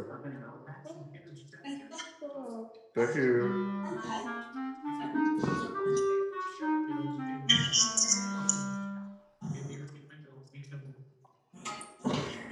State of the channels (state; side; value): identical; both; correlation 1.00